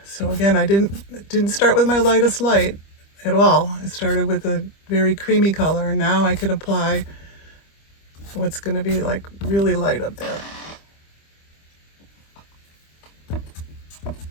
So again, I didn't start with my lightest light at all. I started with a very creamy color, and now I could apply what's going to be like really light up there.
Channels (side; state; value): right; late; 25 ms